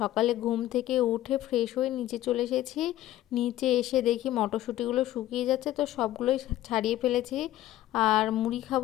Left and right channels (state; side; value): quieter; right; 14.3 dB